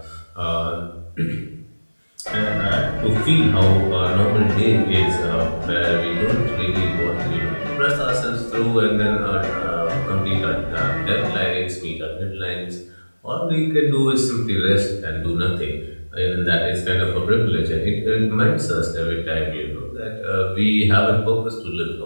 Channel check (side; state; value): both; inverted; correlation -1.00